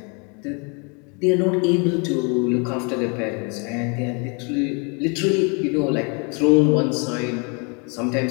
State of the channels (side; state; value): right; quieter; 34.3 dB